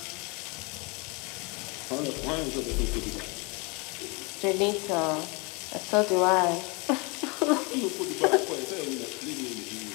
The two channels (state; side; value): quieter; right; 30.0 dB